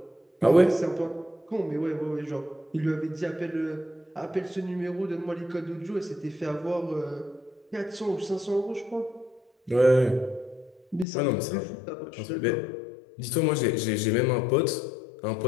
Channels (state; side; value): drops out; right; at 11.1 s